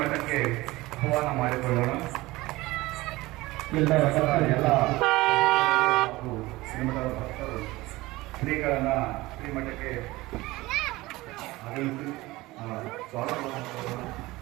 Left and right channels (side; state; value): left; quieter; 19.8 dB